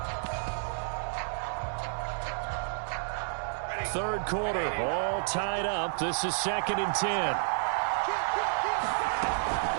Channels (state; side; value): silent; left; digital silence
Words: Third quarter, all tied up. This is 2nd and 10.